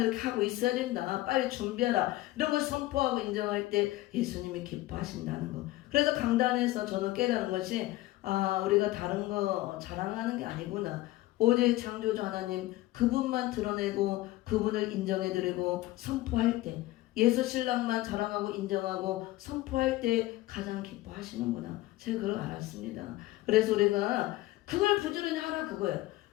이렇게 하고 있어야 된다. 빨리 준비하라. 이런 걸 선포하고 인정할 때 예수님이 기뻐하신다는 거. 그래서 강단에서 저는 깨달은 것이 우리가 다른 거 자랑하는 게 아니구나. 오직 창조주 하나님 그분만 드러내고 그분을 인정해드리고 선포할 때 예수 신랑만 자랑하고 인정하고 선포할 때 가장 기뻐하시는구나. 제가 그걸 알았습니다. 그래서 우리가 그걸 부지런히 하라 그거예요.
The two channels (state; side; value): quieter; right; 17.3 dB